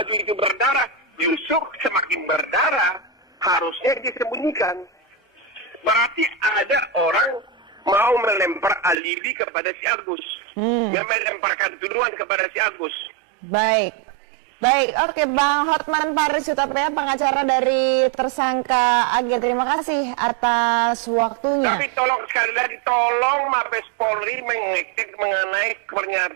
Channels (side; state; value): left; drops out; at 9.0 s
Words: itu berdarah, justru semakin berdarah, harusnya disembunyikan. Berarti ada orang mau melempar alibi kepada si Agus. Melemparkan tuduhan kepada si Agus. Baik, oke, Bang Hotman Paris Hutapea, pengacara dari tersangka Ag. Terima kasih atas waktunya. Tapi tolong sekali lagi, tolong Mabes Polri mengecek mengenai